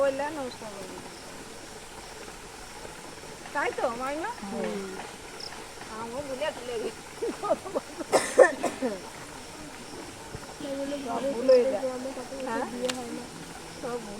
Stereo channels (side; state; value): both; identical; correlation 1.00